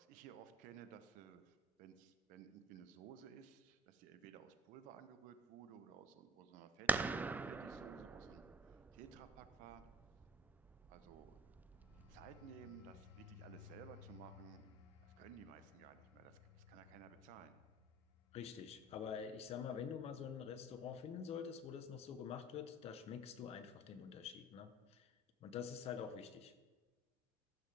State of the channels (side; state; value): both; normal; correlation 0.41